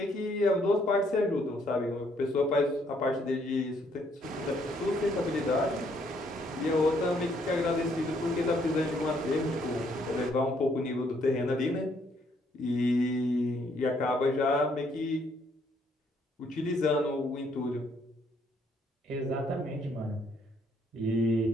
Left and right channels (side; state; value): both; normal; correlation 0.69